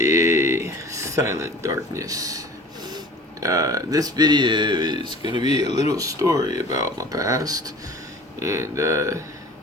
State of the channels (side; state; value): both; normal; correlation 0.44